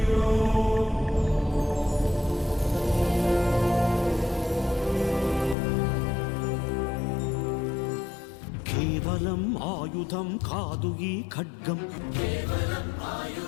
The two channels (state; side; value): drops out; right; at 5.6 s